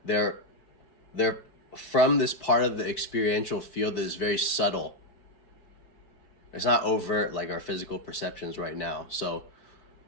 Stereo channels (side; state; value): right; late; 4.7 ms